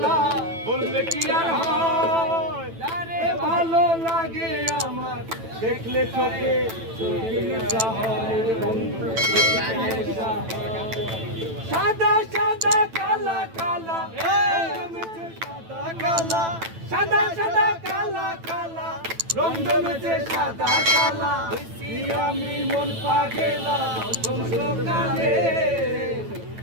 বললে কি আর হয়, তারে ভালো লাগে আমার দেখলে চোখে চোখের নেশা হয়। সাদা সাদা কালা কালা সাদা কালা, সাদা সাদা কালা কালা রং জমেছে সাদা কালা। আমি মন পাগেলা বসন্তকালে,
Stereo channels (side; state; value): left; late; 9.0 ms